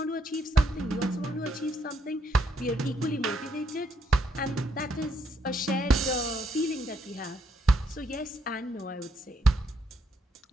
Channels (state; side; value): normal; both; correlation 0.74